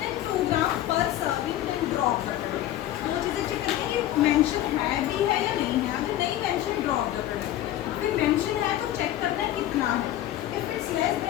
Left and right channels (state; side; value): quieter; right; 13.3 dB